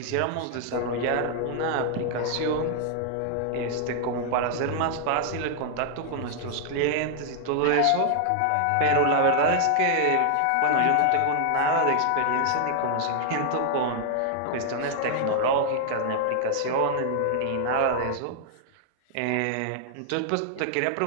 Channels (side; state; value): both; different; correlation 0.00